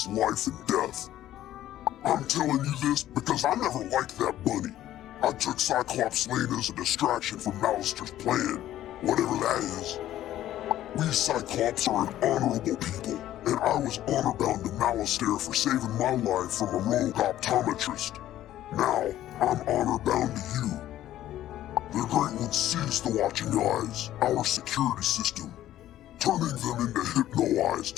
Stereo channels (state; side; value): quieter; right; 13.1 dB